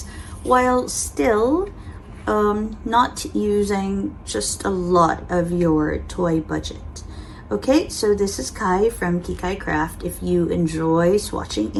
while still not using just a lot of your toy budget. Okay, so this is Kai from Kikai Craft. If you enjoy swatching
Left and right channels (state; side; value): identical; both; correlation 1.00